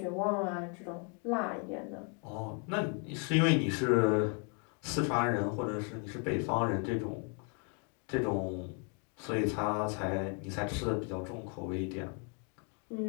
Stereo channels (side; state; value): right; quieter; 37.7 dB